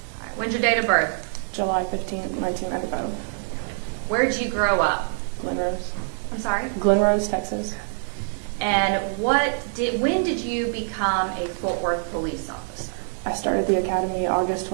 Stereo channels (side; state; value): left; silent; digital silence